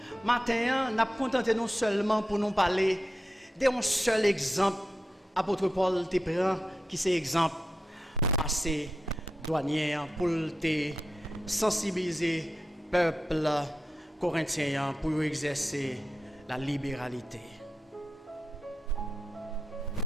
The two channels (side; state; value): both; normal; correlation 0.89